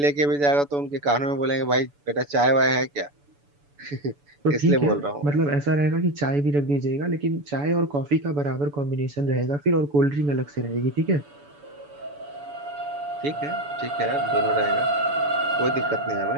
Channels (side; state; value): left; late; 7.0 ms